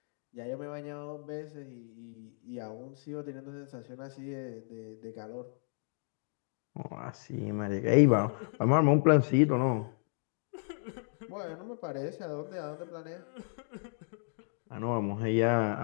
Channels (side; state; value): right; silent; digital silence